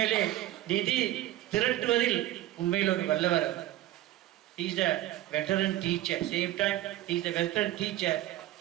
நிதி திரட்டுவதில் உண்மையில் ஒரு வல்லவர். He is a veteran teacher. Same time, he is a veteran teacher.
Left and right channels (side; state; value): left; quieter; 14.9 dB